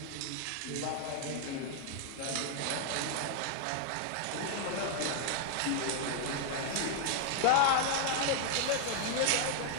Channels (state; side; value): different; both; correlation 0.00